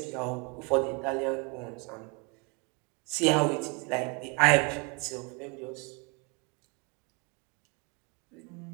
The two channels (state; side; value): quieter; left; 31.0 dB